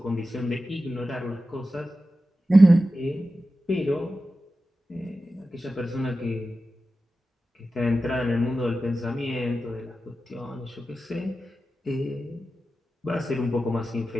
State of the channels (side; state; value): both; normal; correlation 0.93